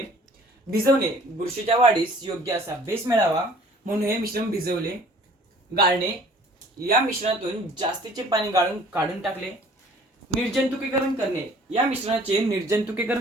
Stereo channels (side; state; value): both; normal; correlation 0.53